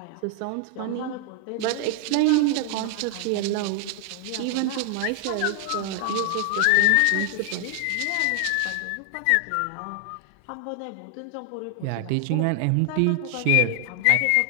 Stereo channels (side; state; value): both; different; correlation 0.00